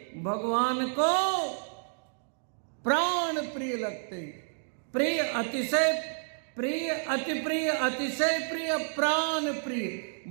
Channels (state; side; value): silent; left; digital silence